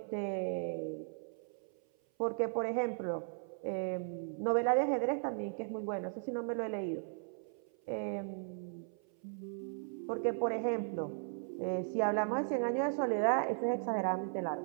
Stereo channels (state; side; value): silent; left; 53 dB below the other